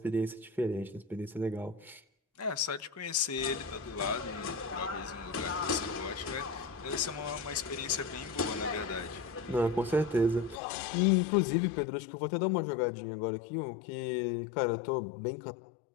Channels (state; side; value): drops out; right; at 10.6 s